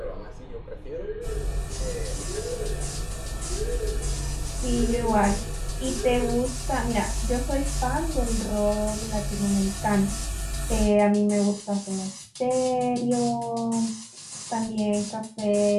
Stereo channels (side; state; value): both; identical; correlation 1.00